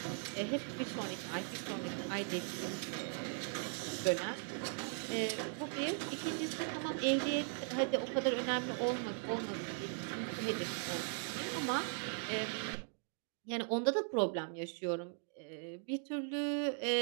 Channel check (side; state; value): left; silent; 52 dB below the other